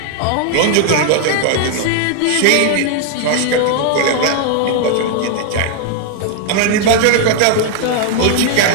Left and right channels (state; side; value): different; both; correlation 0.00